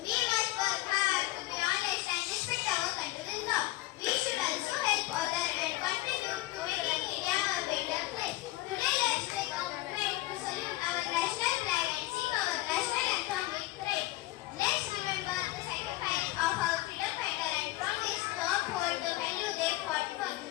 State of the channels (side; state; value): right; quieter; 17.9 dB